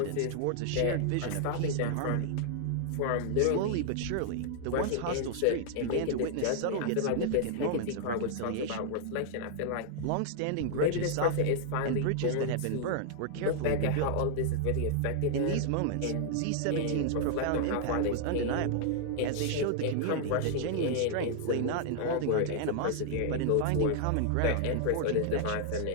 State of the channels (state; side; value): different; both; correlation -0.01